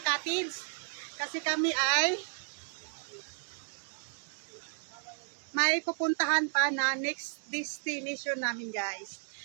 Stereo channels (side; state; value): left; silent; digital silence